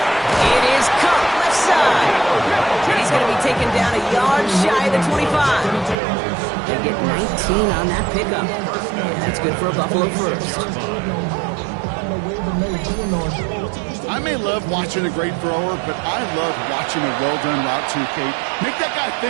It is caught left side. And he's going to be taken down a yard shy of the 25. They get 19 on that pickup. And that's good for a Buffalo first. I may love watching a great thrower, but I love watching a well-done route too, Kate. Make that guy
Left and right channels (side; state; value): left; drops out; at 6.0 s